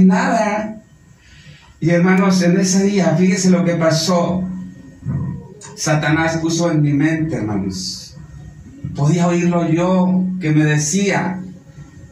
nada. Y hermanos, en ese día, fíjese lo que pasó. Satanás puso en mi mente, hermanos. Podía oírlo yo, que me decía,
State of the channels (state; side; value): identical; both; correlation 1.00